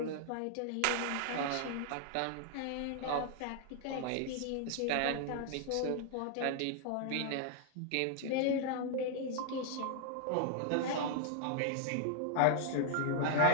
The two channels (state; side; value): different; both; correlation 0.00